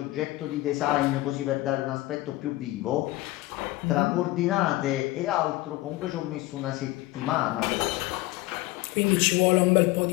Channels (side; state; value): right; quieter; 18.6 dB